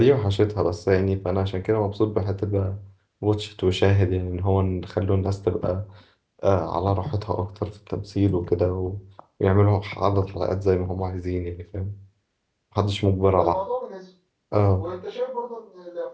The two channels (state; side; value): identical; both; correlation 1.00